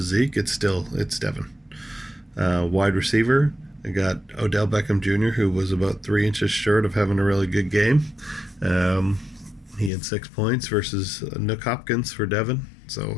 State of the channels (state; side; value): drops out; right; at 9.9 s